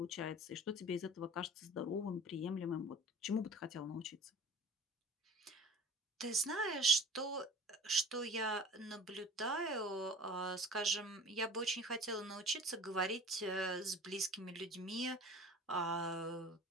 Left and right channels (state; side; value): normal; both; correlation 0.41